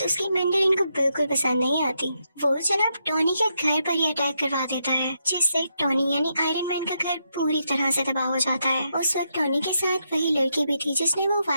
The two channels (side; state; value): both; inverted; correlation -0.81